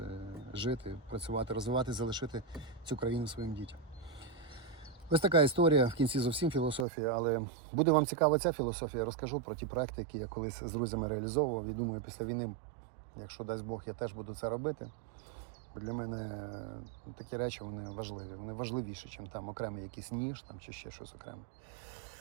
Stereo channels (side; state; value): left; drops out; at 6.9 s